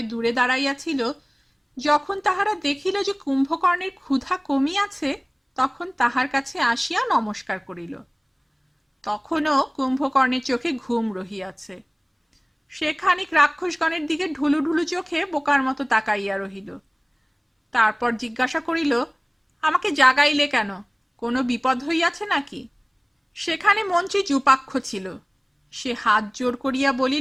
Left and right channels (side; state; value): both; identical; correlation 1.00